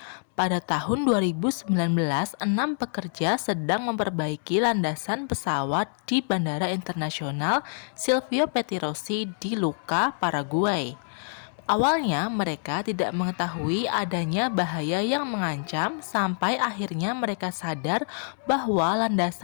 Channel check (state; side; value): silent; right; digital silence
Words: Pada tahun 2019, 6 pekerja sedang memperbaiki landasan pesawat di Bandara Internasional Silvio Pettirossi di Lucca, Paraguay. Awalnya mereka tidak mengetahui adanya bahaya yang mengancam sampai akhirnya mereka sadar bahwa